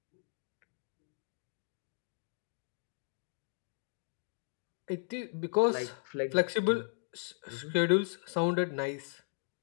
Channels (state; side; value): silent; right; digital silence